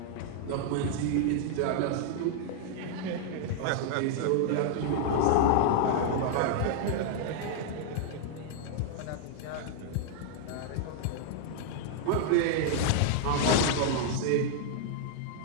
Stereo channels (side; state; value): both; different; correlation -0.01